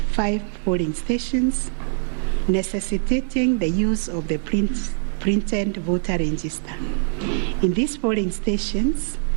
polling stations, necessitating the use of the printed voter register. In these polling stations,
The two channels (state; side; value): silent; left; digital silence